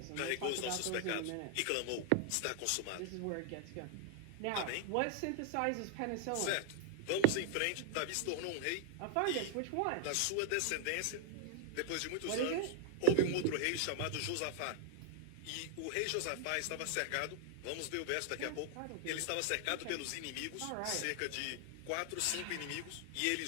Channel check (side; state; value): both; different; correlation 0.00